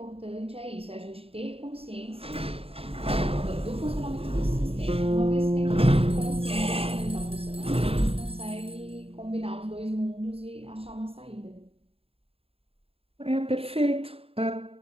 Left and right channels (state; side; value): late; left; 0.28 ms